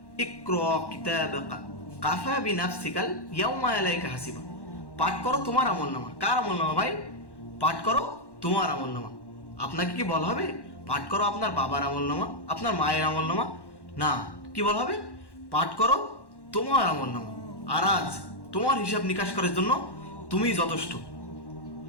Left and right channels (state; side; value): late; right; 1.1 ms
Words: ইকরা কিতাবাকা কাফা বিনাফসিকাল ইয়াউমা আলাইকা হাসিবা। পাঠ করো তোমার আমলনামা। কার আমলনামা ভাই? পাঠ করো তোমার আমলনামা। আপনাকে কি বলা হবে পাঠ করো আপনার বাবার আমলনামা, আপনার মায়ের আমলনামা? না, কি বলা হবে? পাঠ করো তোমার আমলনামা। আর আজ তোমার হিসাব নিকাশ করার জন্য তুমি যথেষ্ট।